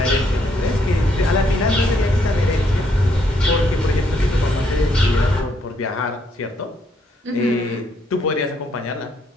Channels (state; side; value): normal; both; correlation 0.72